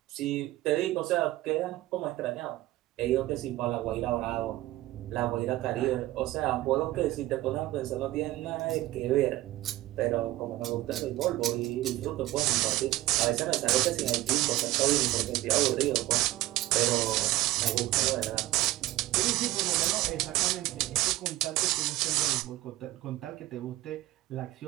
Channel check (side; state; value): left; quieter; 16.9 dB